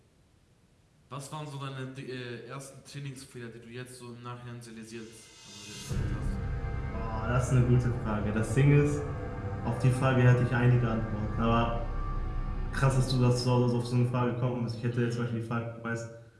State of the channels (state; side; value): identical; both; correlation 1.00